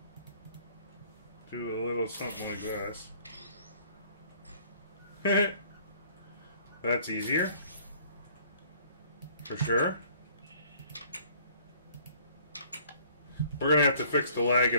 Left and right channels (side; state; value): both; inverted; correlation -0.56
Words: do a little something like this? That's easier. For sure. We're going to have to fix the lag